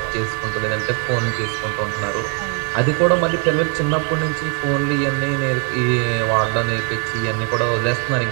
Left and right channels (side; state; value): left; quieter; 38.9 dB